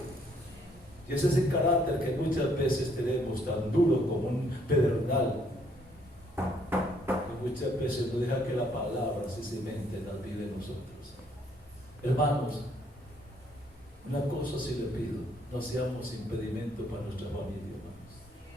Y ese es el carácter que muchas veces tenemos tan duro como un pedernal, que muchas veces no deja que la palabra se cimente en la vida de nosotros. Hermanos, una cosa sí le pido: no seamos impedimento para nuestra familia, hermanos.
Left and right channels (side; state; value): both; normal; correlation 0.67